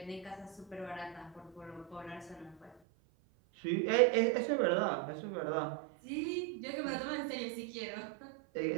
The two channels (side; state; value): left; drops out; at 2.8 s